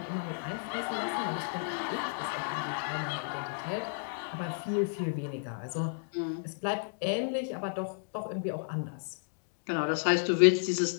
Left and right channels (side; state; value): right; silent; digital silence